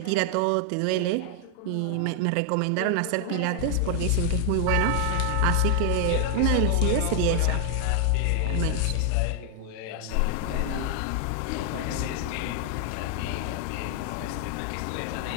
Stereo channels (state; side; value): different; both; correlation 0.00